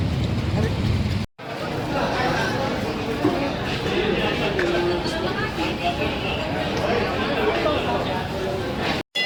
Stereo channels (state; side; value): identical; both; correlation 1.00